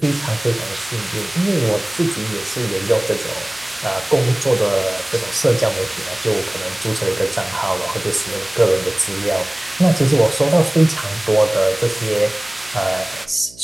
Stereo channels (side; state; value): right; noise; hum, 24 dB below the sound